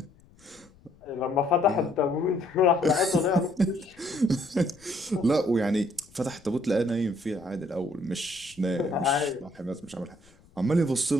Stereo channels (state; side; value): noise; left; rumble, 28 dB below the sound